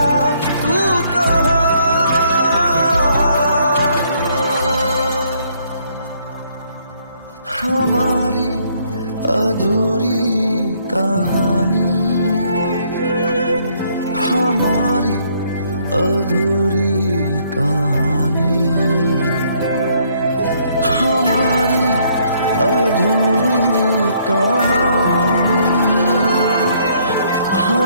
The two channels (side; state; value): both; inverted; correlation -0.67